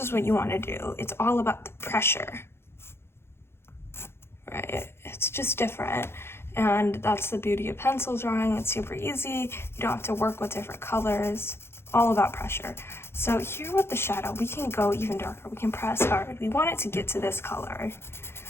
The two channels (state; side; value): late; right; 0.12 ms